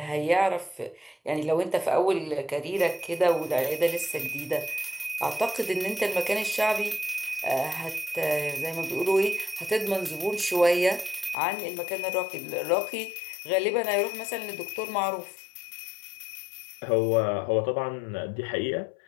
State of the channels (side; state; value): right; drops out; at 11.4 s